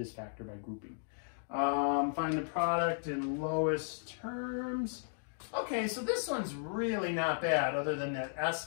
factor by grouping. Find the product in lowest terms. Okay, so this one's really not bad, other than that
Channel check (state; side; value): silent; right; digital silence